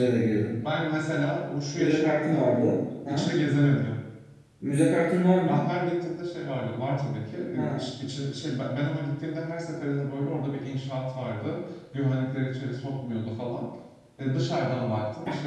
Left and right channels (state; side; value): identical; both; correlation 1.00